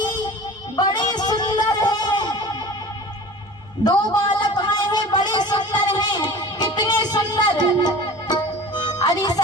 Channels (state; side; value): normal; both; correlation 0.39